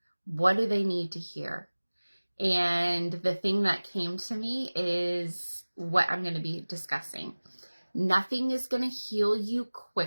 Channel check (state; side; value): inverted; both; correlation -1.00